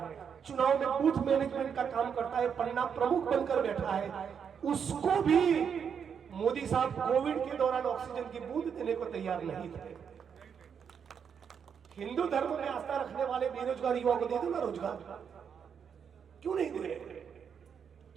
चुनाव में बूथ मैनेजमेंट का काम करता है, पन्ना प्रमुख बनकर बैठा है, उसको भी मोदी साहब कोविड के दौरान ऑक्सीजन की बूंद देने को तैयार नहीं थे। हिंदू धर्म में आस्था रखने वाले बेरोजगार युवाओं को दे दो ना रोजगार, क्यों नहीं दे रहे?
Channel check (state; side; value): quieter; left; 7.2 dB